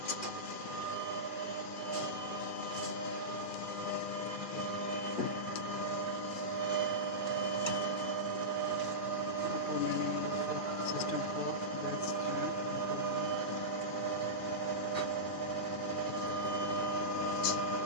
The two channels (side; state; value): right; late; 2.4 ms